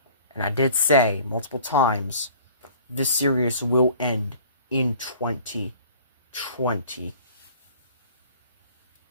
And I did say multiple times, this series will end in 2025.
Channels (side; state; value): both; inverted; correlation -0.49